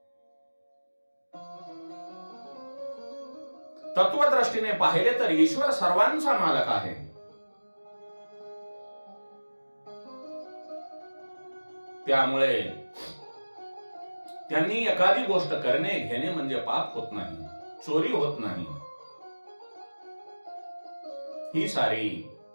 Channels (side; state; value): both; inverted; correlation -1.00